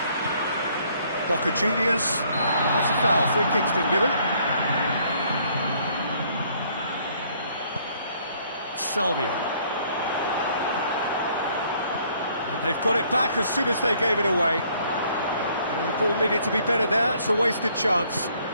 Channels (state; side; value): inverted; both; correlation -0.64